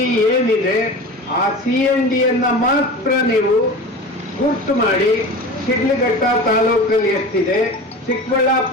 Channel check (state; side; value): normal; both; correlation 0.33